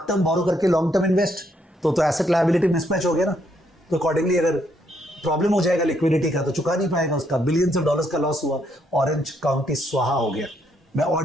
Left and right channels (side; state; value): both; normal; correlation 0.73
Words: टर्म बोरो करके लॉन्ग टर्म इन्वेस्ट, तो एसेट लायबिलिटी मिसमैच हो गया ना। तो अकॉर्डिंगली अगर प्रॉब्लम हो जाएगा लिक्विडिटी का तो चुका नहीं पाएगा, उसका बिलियंस ऑफ डॉलर्स का लॉस हुआ, ऑरेंज काउंटी स्वाहा हो गया। मैं